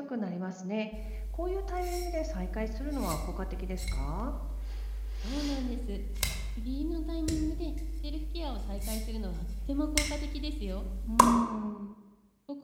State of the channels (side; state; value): both; identical; correlation 1.00